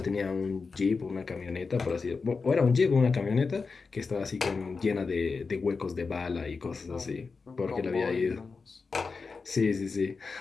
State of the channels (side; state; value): right; quieter; 4.6 dB